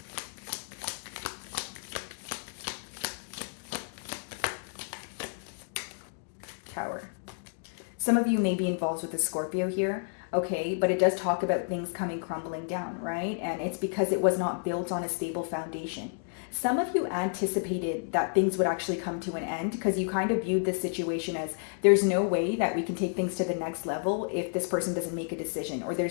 Tower. Some of you may be involved with a Scorpio here, okay, but it does talk about things coming crumbling down, right? And it's because it was not built on a stable foundation. Some of you anticipated that things would actually come to an end, because you kind of viewed this situation as, there's no way that we can take things to the next level if this person doesn't make a decision, or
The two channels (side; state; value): right; silent; digital silence